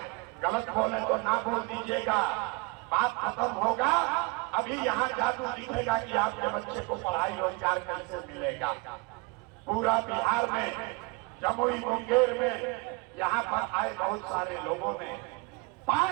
गलत बोले तो ना बोल दीजिएगा, बात खत्म होगा। अभी यहाँ जादू दिखेगा कि आपके बच्चे को पढ़ाई रोजगार कैसे मिलेगा। पूरा बिहार में, जमुई मुंगेर में, यहाँ पर आए बहुत सारे लोगों ने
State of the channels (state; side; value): quieter; left; 26.9 dB